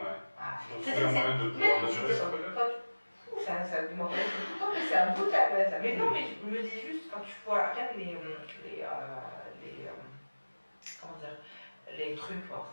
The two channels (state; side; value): inverted; both; correlation -1.00